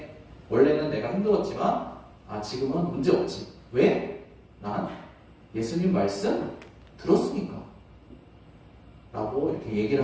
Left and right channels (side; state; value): both; identical; correlation 1.00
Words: 원래는 내가 힘들었지만 지금은 문제 없지. 왜? 난 예수님 말씀 들었으니까. 라고 이렇게